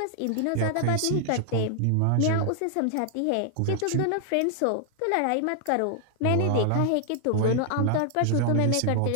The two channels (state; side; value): different; both; correlation 0.00